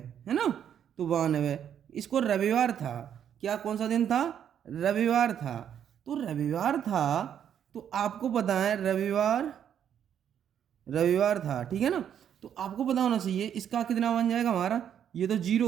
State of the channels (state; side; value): quieter; left; 9.2 dB